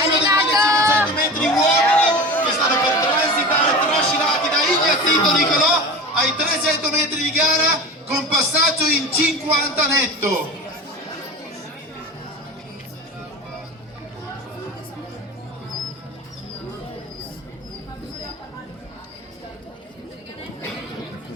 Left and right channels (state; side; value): normal; both; correlation 0.31